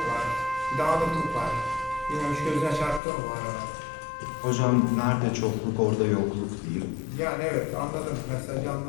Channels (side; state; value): right; drops out; at 3.0 s